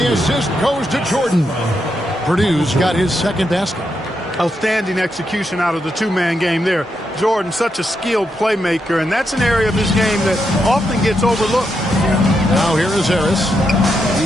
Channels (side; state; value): both; normal; correlation 0.83